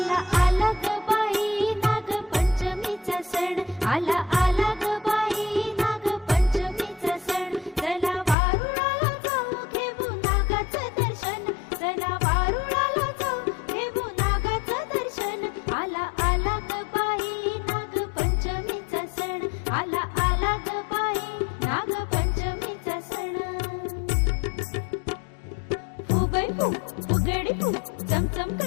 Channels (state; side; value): drops out; right; at 8.3 s